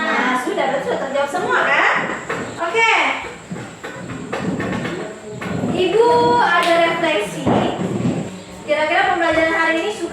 sudah berarti sudah terjawab semua kan? Oke. Ibu ada refleksi. Kira-kira pembelajaran hari ini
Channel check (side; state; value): both; identical; correlation 1.00